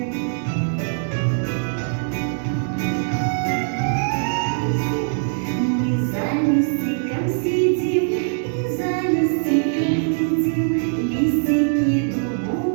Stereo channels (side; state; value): left; silent; digital silence